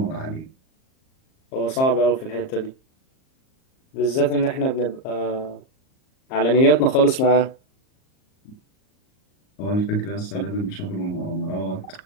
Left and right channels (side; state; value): right; late; 38 ms